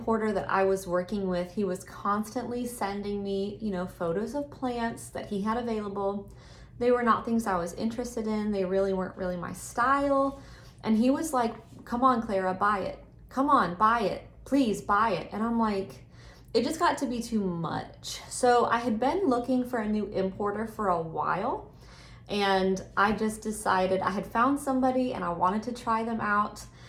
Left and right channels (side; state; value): both; identical; correlation 1.00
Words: that I was working with, he was constantly sending me, you know, photos of plants that he had available. They were not things I was interested in. They really weren't really my style. And he was like, come on, Clara, buy it. Come on, buy it. Please buy it. And I'm like, it just got to be too much. So I had been looking for a new importer for a while, and I just decided I had found somebody and I wanted to try them out.